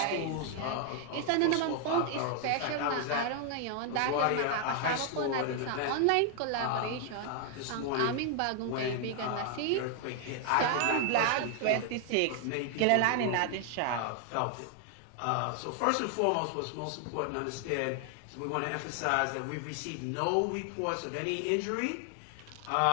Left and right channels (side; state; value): both; different; correlation 0.00